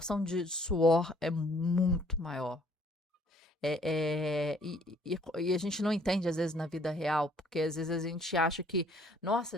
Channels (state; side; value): normal; both; correlation 0.61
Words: de suor é muito maior. E a gente não entende, às vezes, na vida real, porque às vezes a gente acha que, nossa,